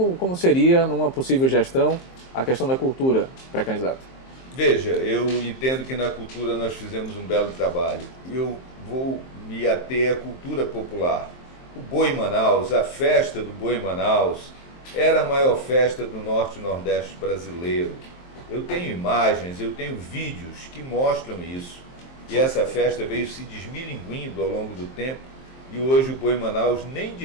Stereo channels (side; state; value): right; late; 23 ms